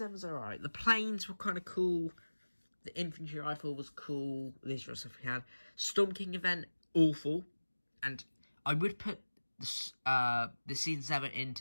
alright. The planes were kind of cool. The infantry rifle was cool. These were stuff we had. Storm King event, awful. And I would put the Season 7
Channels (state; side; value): inverted; both; correlation -1.00